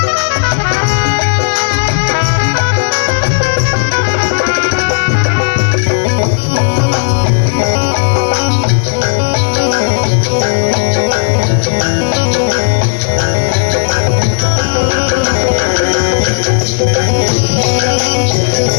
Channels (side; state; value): right; silent; digital silence